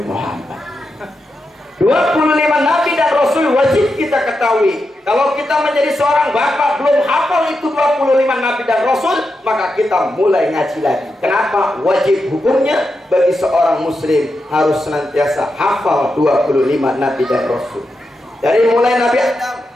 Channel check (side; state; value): both; normal; correlation 0.87